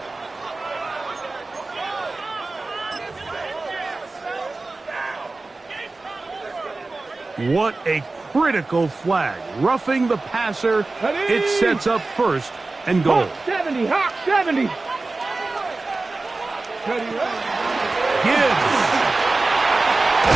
What a critical flag. Roughing the passer. It sets up 1st and goal. Hawk 70, Hawk 70. Gibbs.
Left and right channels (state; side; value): quieter; left; 3.4 dB